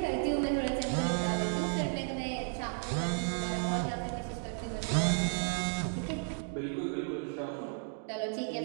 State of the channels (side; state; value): left; silent; 55 dB below the other